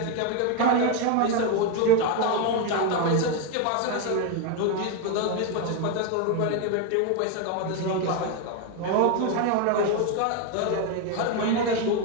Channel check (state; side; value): different; both; correlation 0.02